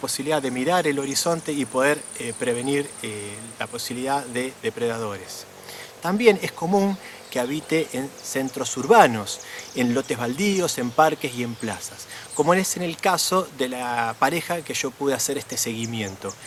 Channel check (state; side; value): identical; both; correlation 1.00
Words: de mirar el horizonte y poder prevenir la posibilidad de depredadores. También es común que habite en centros urbanos, en lotes baldíos, en parques y en plazas, como es en el caso de la pareja que yo pude hacer este seguimiento,